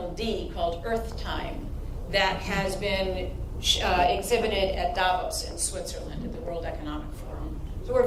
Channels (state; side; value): identical; both; correlation 1.00